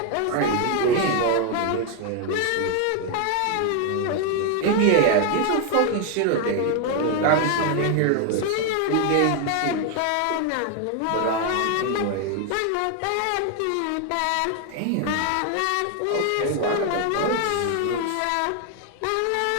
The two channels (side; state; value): both; different; correlation 0.01